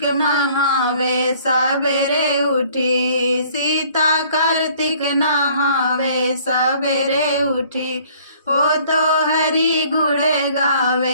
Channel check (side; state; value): both; inverted; correlation -0.57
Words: नहावे सवेरे उठी, सीता कार्तिक नहावे सवेरे उठी, वो तो हरि गुण